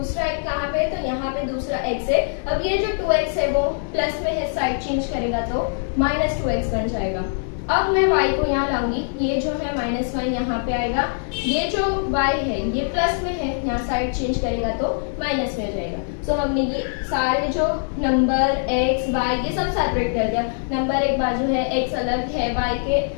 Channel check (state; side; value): silent; right; 64 dB below the other